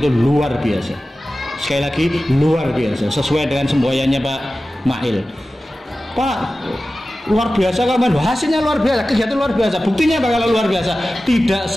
itu luar biasa. Sekali lagi luar biasa, sesuai dengan semboyannya Pak Mahil. Pak, luar biasa kan, hasilnya luar biasa, kegiatan luar biasa. Buktinya apa kalau luar biasa? Tidak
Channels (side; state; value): both; normal; correlation 0.95